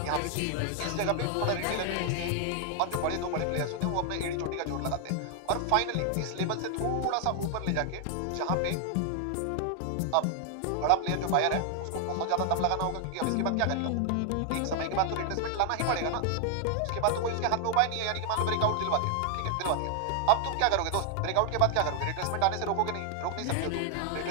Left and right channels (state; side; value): different; both; correlation 0.00